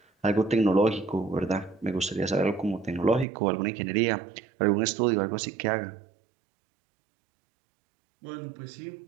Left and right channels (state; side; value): drops out; left; at 3.2 s